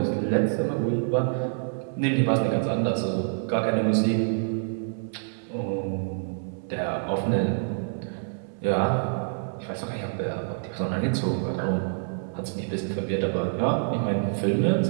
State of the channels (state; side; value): silent; left; 60 dB below the other